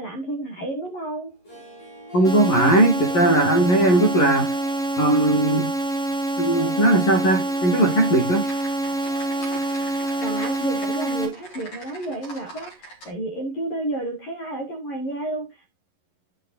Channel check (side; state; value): right; late; 11 ms